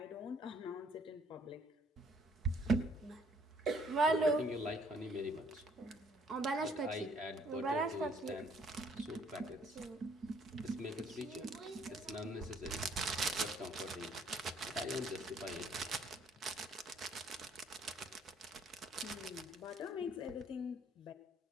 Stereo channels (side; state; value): both; normal; correlation 0.63